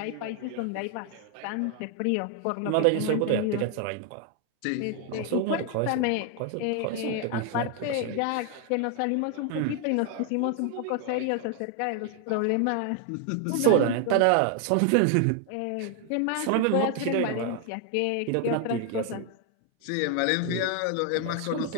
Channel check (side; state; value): both; different; correlation 0.00